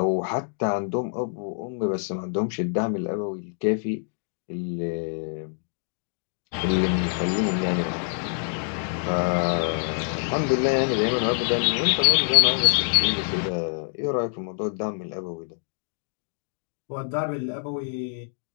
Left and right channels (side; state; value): right; silent; digital silence